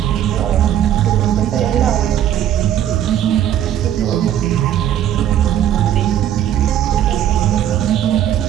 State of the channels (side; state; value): left; quieter; 10.8 dB